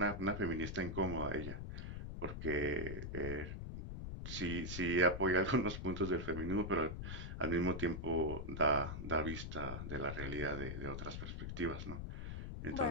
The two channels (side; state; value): left; noise; rumble, 6 dB below the sound